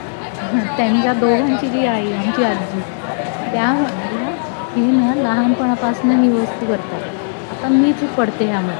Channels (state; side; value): silent; right; 68 dB below the other